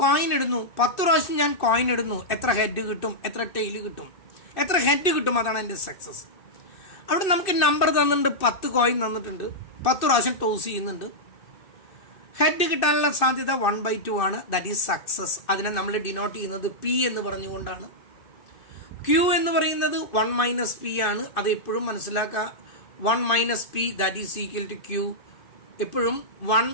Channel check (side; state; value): right; late; 2.6 ms